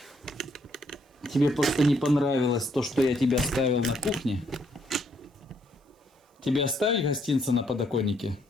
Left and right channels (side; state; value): both; normal; correlation 0.71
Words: тебе просто не понравилось то, что я тебе оставил на кухне. Тебе оставить гостинцы на подоконнике?